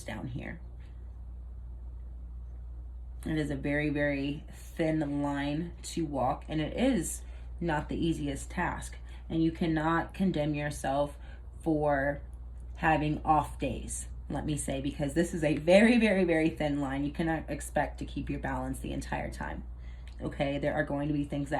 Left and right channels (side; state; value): both; identical; correlation 1.00